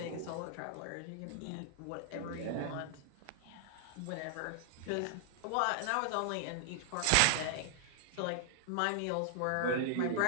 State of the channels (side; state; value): both; different; correlation -0.01